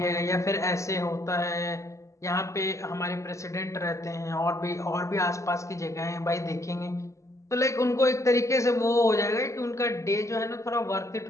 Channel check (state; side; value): late; right; 0.15 ms